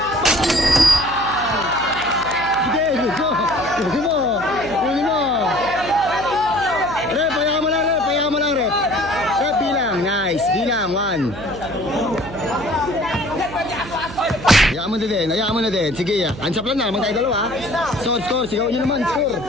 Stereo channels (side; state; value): right; noise; hum, 13 dB below the sound